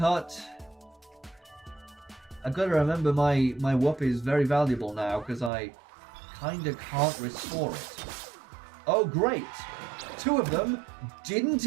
I've got to remember my whoop is very valuable now, because I kinda can't restore it. Oh, great! 2 of them didn't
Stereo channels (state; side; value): drops out; left; at 5.5 s